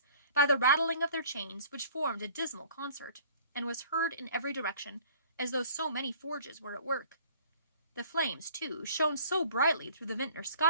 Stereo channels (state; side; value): inverted; both; correlation -0.51